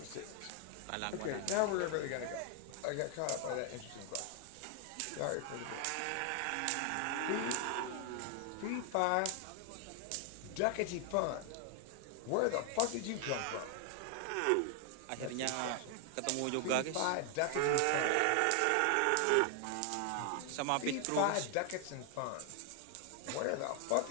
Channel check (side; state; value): both; different; correlation 0.00